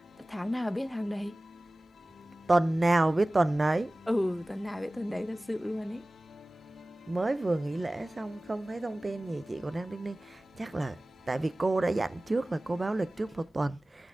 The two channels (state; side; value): normal; both; correlation 0.98